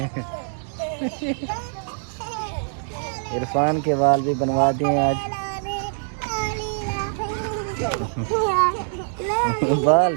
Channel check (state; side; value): silent; left; digital silence